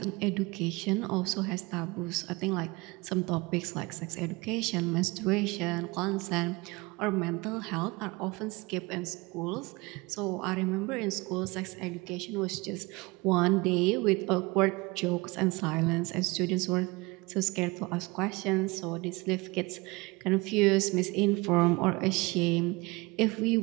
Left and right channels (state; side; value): quieter; left; 24.7 dB